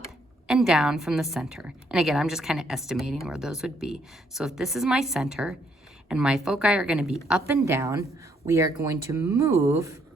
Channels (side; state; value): both; normal; correlation 0.71